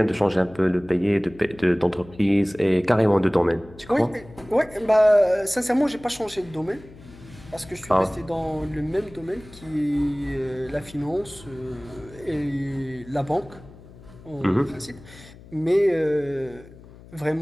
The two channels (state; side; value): noise; left; hum, 20 dB below the sound